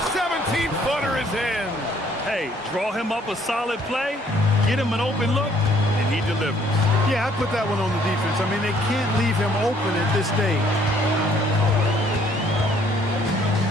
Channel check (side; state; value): both; normal; correlation 0.63